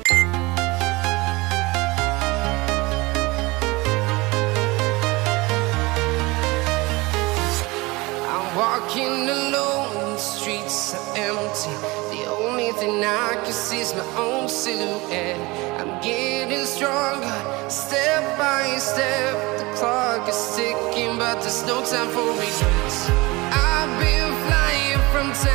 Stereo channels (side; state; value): left; quieter; 23.1 dB